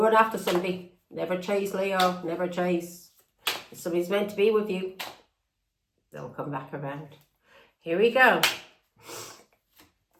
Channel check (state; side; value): identical; both; correlation 1.00